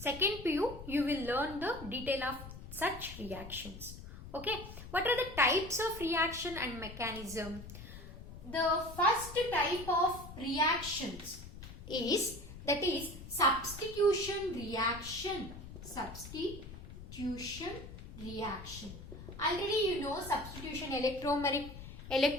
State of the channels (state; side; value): noise; left; rumble, 13 dB below the sound